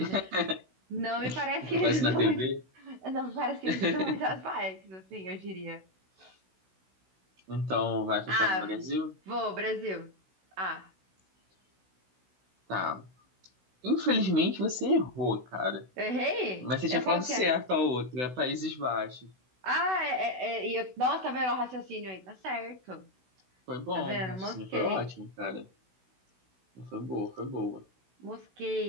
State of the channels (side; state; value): left; late; 16 ms